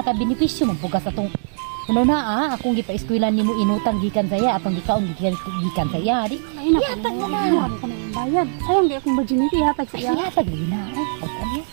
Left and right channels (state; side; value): silent; left; digital silence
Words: ka-benepisyo magpugas atong ano na akong gipa-eskwilan nimo inutang gikan saya atong gikaon gikan saya di. Ay na ihatag mo na. Marami ka na yung bayad. Sayang di akong virginity ihatag sa Ay, iya. ihatag lagi na. Ay,